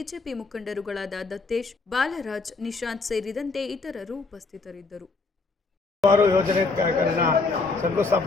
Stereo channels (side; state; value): right; quieter; 4.0 dB